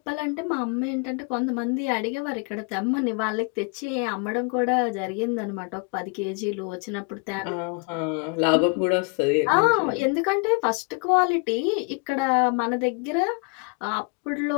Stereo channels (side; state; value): right; quieter; 34.2 dB